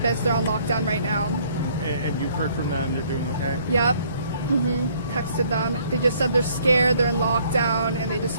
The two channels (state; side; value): inverted; both; correlation -0.62